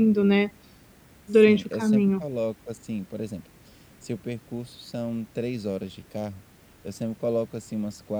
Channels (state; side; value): identical; both; correlation 1.00